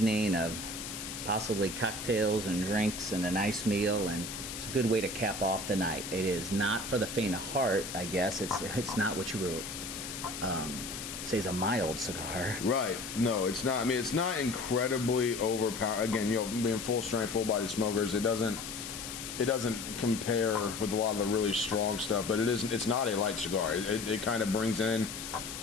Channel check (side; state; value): left; noise; hiss, 8 dB below the sound